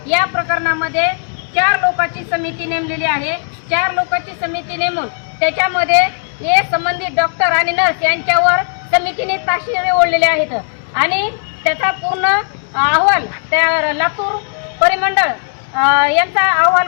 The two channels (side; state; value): right; silent; digital silence